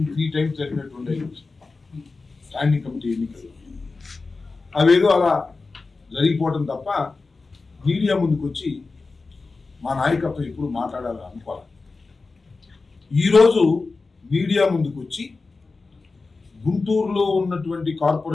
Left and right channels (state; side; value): quieter; right; 3.9 dB